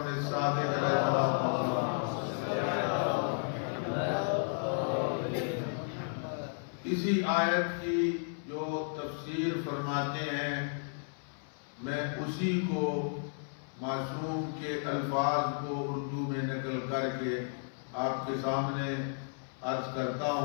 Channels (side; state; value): right; silent; 56 dB below the other